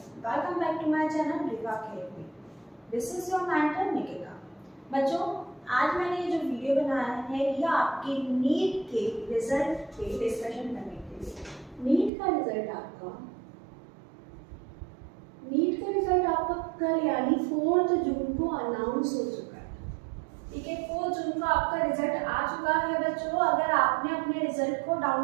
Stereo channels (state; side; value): drops out; left; at 12.1 s